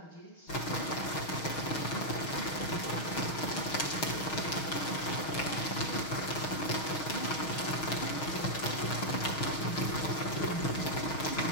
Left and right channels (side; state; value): right; late; 6.4 ms